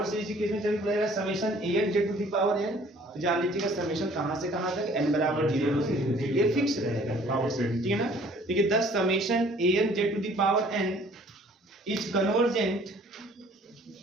सीरीज के केस में चल पड़ेगा summation an z to the power n, तो जान लीजिएगा समेशन कहां से कहां तक n बराबर 0 से, ये फिक्स रहेगा पावर सीरीज, ठीक है ना। देखिए 10 summation an z to the power n is convergent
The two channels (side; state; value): both; normal; correlation 0.55